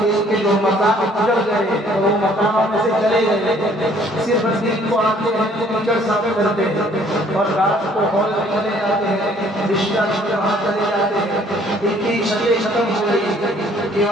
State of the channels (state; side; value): normal; both; correlation 0.60